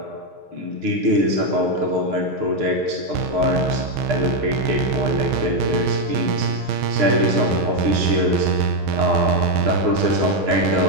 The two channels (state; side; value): late; left; 6.6 ms